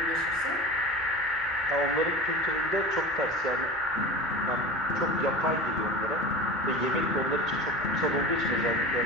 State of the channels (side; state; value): both; normal; correlation 0.33